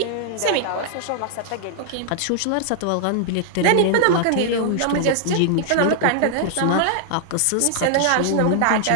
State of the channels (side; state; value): both; different; correlation 0.00